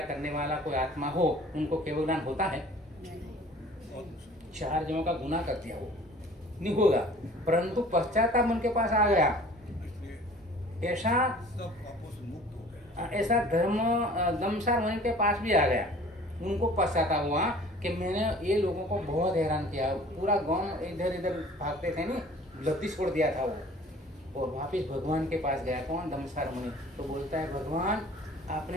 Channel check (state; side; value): normal; both; correlation 0.48